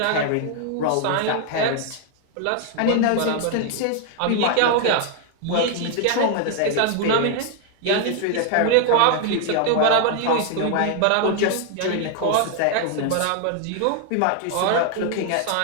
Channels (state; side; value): different; both; correlation 0.00